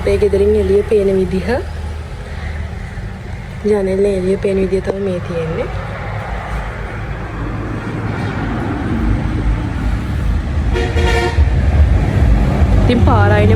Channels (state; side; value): identical; both; correlation 1.00